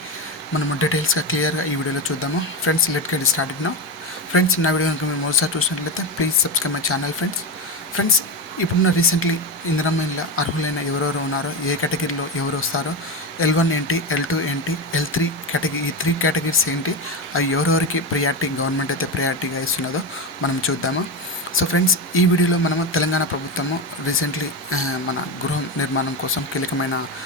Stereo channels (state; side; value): normal; both; correlation 0.17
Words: మనము డీటెయిల్స్గా క్లియర్గా ఈ వీడియోలో చూద్దాము. Friends, let get started now. Friends, నా వీడియో కనుక మీరు మొదటిసారి చూసినట్లయితే please subscribe my channel. Friends, ఇప్పుడున్న రీసెంట్లీ ఇందిరమ్మ ఇళ్ళ అర్హులైన ఎవరెవరు ఉన్నారో, ఏ కేటగిరీలో ఎవరు వస్తారో, L1 ఏంటి, L2 ఏంటి, L3 కేటగిరీ, ఈ 3 కేటగిరీస్ ఏంటి, అవి ఎవరెవరికి ప్రియారిటీ గవర్నమెంట్ అయితే ప్రియారిటీగా ఇస్తున్నదో మనం చూద్దాము. సో ఫ్రెండ్స్, ఈ వీడియోలో మనము తెలంగాణ ప్రభుత్వము రీసెంట్లీ మన గృహ నిర్మాణం కోసం కీలకమైన